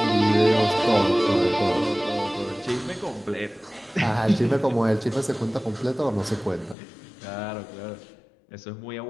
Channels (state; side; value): drops out; right; at 6.8 s